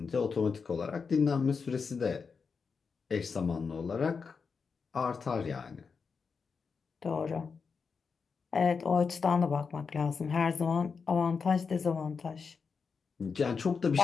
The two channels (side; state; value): right; quieter; 5.4 dB